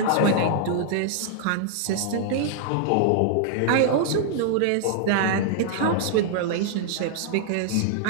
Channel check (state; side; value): different; both; correlation -0.01